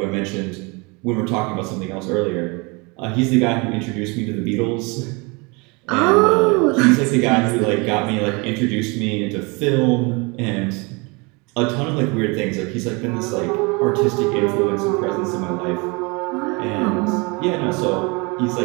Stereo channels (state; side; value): quieter; left; 28.6 dB